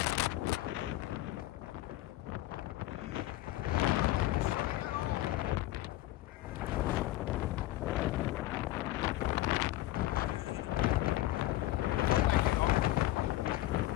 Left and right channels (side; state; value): right; quieter; 16.4 dB